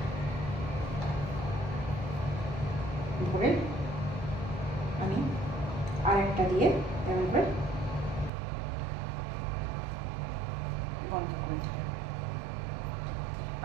ভরে আমি আরেকটা দিয়ে এমন করে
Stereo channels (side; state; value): left; drops out; at 8.3 s